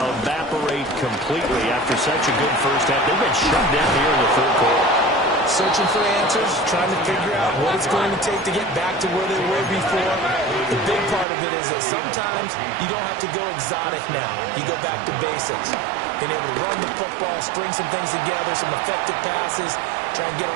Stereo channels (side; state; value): left; drops out; at 11.2 s